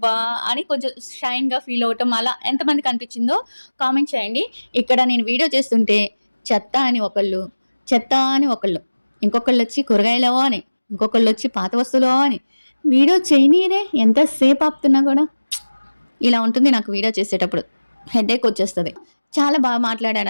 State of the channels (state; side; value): inverted; both; correlation -1.00